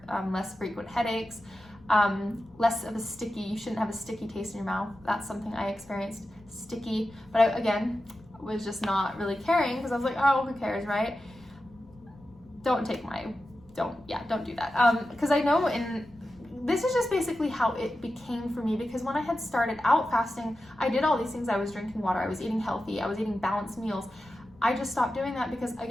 less frequent headaches, less of you shouldn't have a sticky taste in your mouth. That's something I experienced, sticky, but I, again, was just not really caring because I was like, oh, who cares, right? Don't do that. Because I know this is just basically how it became for me, because when I had started out fasting, I did all these things. I was drinking water, I was eating healthy, I was eating balanced meals. I just stopped doing that because,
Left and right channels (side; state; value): left; noise; rumble, 25 dB below the sound